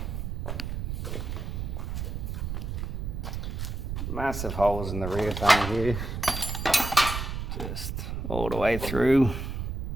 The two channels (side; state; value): right; noise; rumble, 4 dB below the sound